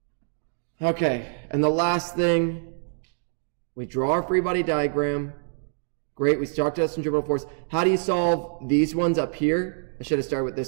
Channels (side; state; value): left; silent; digital silence